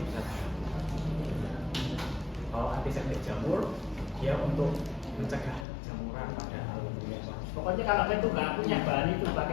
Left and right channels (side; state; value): right; drops out; at 5.7 s